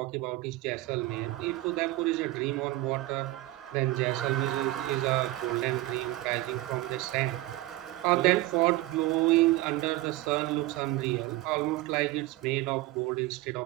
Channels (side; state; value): left; quieter; 17.8 dB